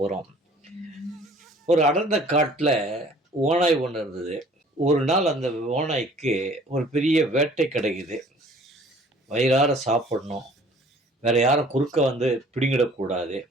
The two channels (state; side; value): normal; both; correlation 0.53